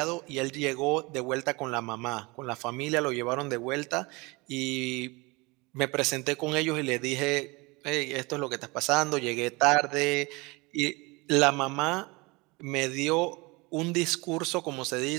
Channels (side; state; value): left; quieter; 25.5 dB